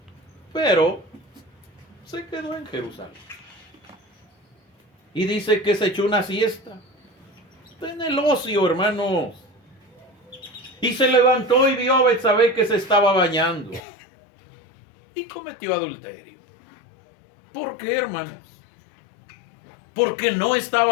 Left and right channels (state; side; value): drops out; right; at 13.8 s